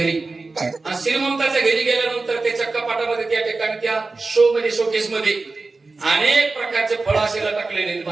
आणि श्रीमंताच्या घरी गेल्यानंतर त्याच्या कपाटामध्ये त्या ठिकाणी त्या शोकेस मध्ये अनेक प्रकारचे फळ असे टाकलेले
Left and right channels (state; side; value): quieter; left; 3.7 dB